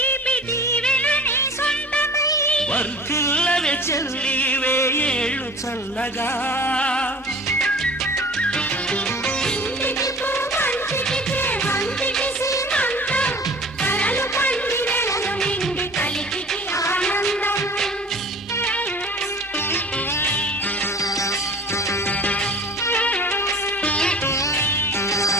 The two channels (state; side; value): normal; both; correlation 0.43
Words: దీవెన నీ సొంతమై వర్ధిల్లవే చెల్లి వేయేళ్ళు చల్లగా